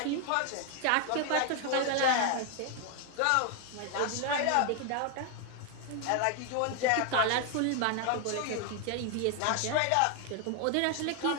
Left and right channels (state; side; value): different; both; correlation 0.00